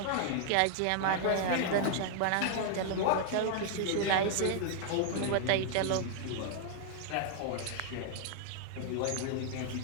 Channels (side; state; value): both; different; correlation -0.01